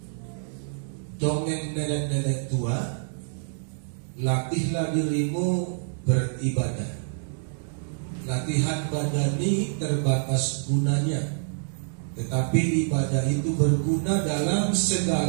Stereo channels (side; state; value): left; silent; 58 dB below the other